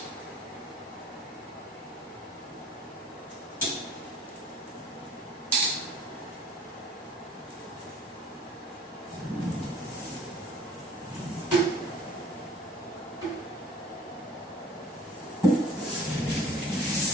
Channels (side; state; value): both; normal; correlation 0.50